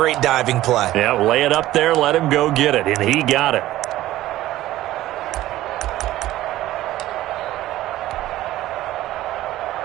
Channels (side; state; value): left; quieter; 15.2 dB